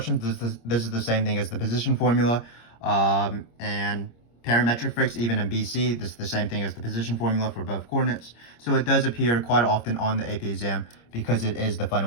this is the same thing as the position formula. And parametric fricks, even in BC, this is the same thing as the position formula for both coordinates. So it does appear quite often on the AP exam because it is the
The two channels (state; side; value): late; right; 26 ms